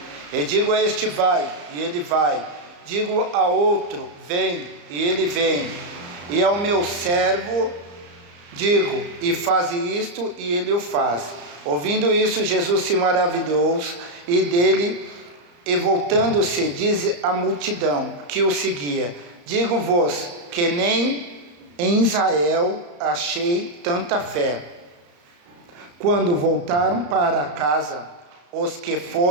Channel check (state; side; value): late; left; 34 ms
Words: E digo a este, vai, e ele vai. Digo a outro, vem, e ele vem. E ao meu servo digo, e faz isto, e ele o faz. Ouvindo isso, Jesus se maravilhou e dele, e voltando-se, diz à multidão que o seguia: digo-vos que nem em Israel achei tanta fé. Quando voltaram para casa, os que